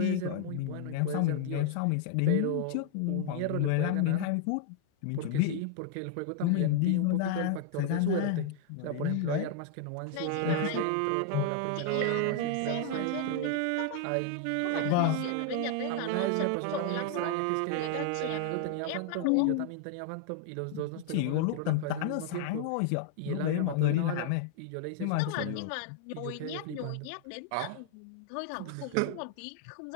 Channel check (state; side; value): different; both; correlation 0.00